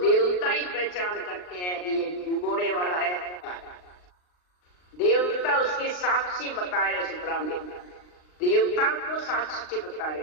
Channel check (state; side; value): late; right; 39 ms